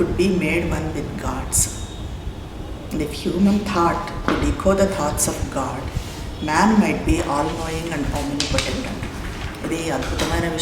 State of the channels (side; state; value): both; identical; correlation 1.00